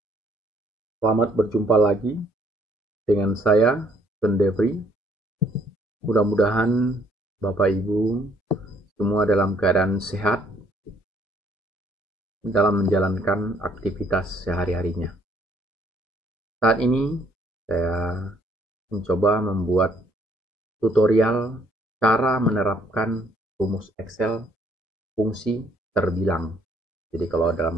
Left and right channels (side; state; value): both; normal; correlation 0.65